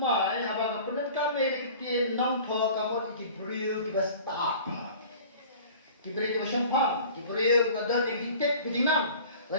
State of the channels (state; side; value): inverted; both; correlation -0.44